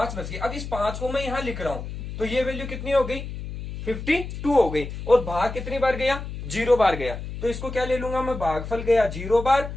बच गए। अब इस 5 को मैं यहां लिख रहा हूं, तो ये वैल्यू कितनी हो गई, 52 हो गई। और भाग कितनी बार गया, 0 बार गया। तो इसको क्या ले लूंगा मैं, भागफल गया 0 बार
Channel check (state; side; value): noise; left; hum, 8 dB below the sound